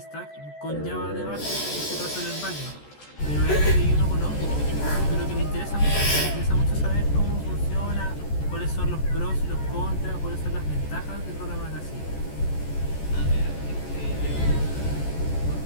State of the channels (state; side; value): late; right; 14 ms